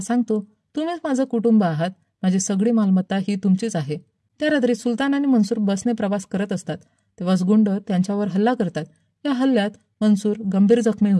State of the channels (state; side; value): identical; both; correlation 1.00